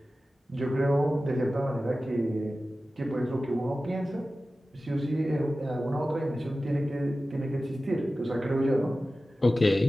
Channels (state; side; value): normal; both; correlation 0.95